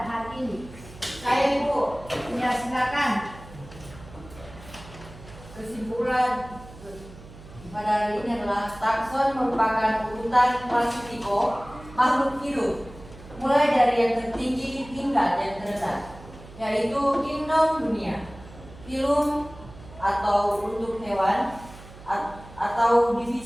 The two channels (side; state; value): right; noise; hum, 18 dB below the sound